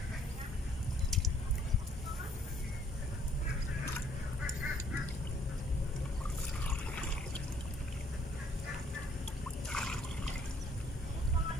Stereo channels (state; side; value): normal; both; correlation 0.62